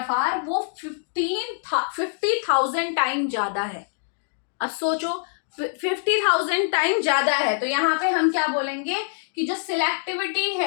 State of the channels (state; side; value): silent; right; digital silence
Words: वो 50,000 टाइम ज्यादा है। अब सोचो 50,000 टाइम ज्यादा है तो यहाँ पे हम क्या बोलेंगे कि जो सिलेक्टिविटी